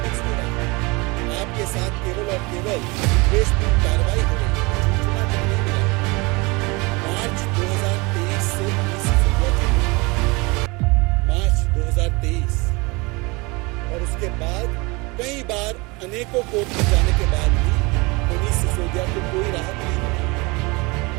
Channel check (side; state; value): left; quieter; 26.1 dB